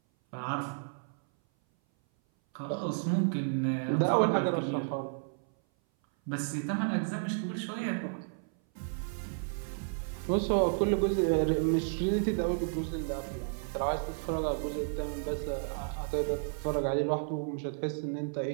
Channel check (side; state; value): left; silent; 56 dB below the other